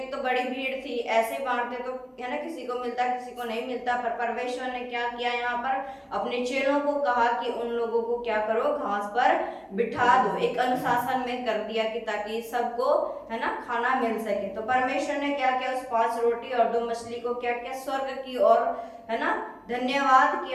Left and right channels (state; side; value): identical; both; correlation 1.00